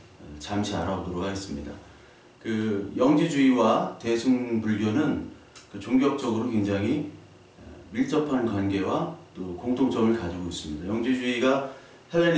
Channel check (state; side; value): identical; both; correlation 1.00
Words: 잠시 알아보도록 하겠습니다. 그 영지주의와 대승불교는 그 종교적으로 굉장히 밀접한 관계와 또 공통점을 가지고 있습니다. 영지주의가